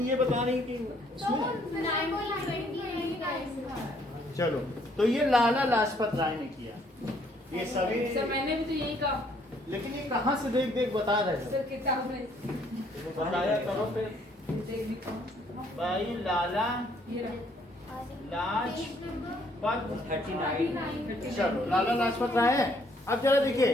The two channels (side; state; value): both; normal; correlation 0.66